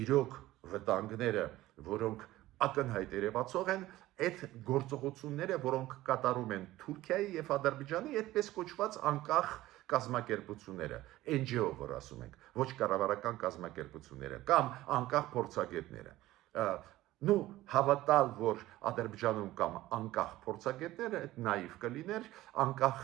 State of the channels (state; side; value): quieter; left; 16.3 dB